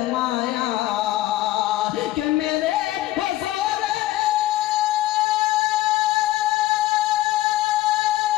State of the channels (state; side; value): quieter; right; 15.4 dB